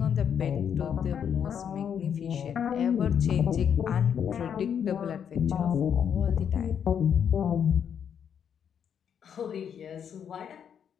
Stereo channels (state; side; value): quieter; right; 8.1 dB